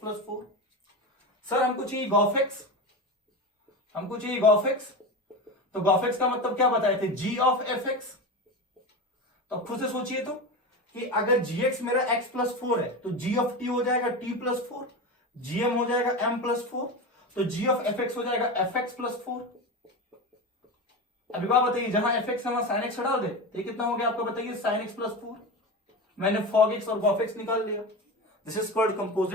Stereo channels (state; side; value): normal; both; correlation 0.23